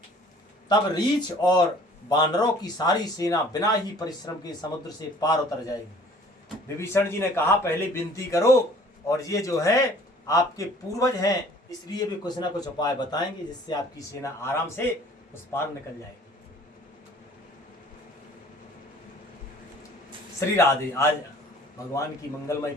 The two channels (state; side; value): normal; both; correlation 0.52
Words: तब रीछ और बानरों की सारी सेना बिना ही परिश्रम के समुद्र से पार उतर जाएगी। विभीषण जी ने कहा पहले विनती करो, और ये जो है आपके पूर्वज हैं, इसलिए भी कुछ ना कुछ उपाय बताएंगे जिससे आपकी सेना आराम से उस पार निकल जाएगी। श्री राधे। आज भगवान की मंगलमय